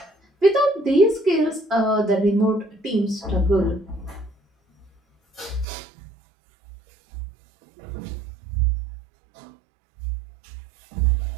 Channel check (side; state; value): left; drops out; at 5.7 s